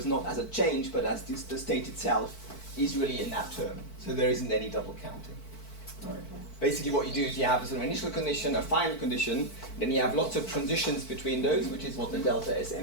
not as a change, but as the state itself is really in that term. So there isn't any double counting, right? Basically what you do is you have a sort of initial condition, a final condition, then you have lots of transitions between those, which is what the delta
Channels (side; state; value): right; late; 4.5 ms